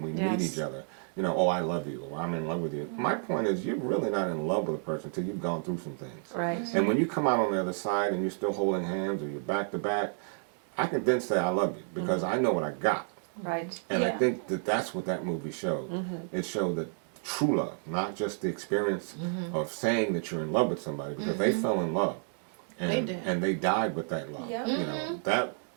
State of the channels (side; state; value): left; silent; 57 dB below the other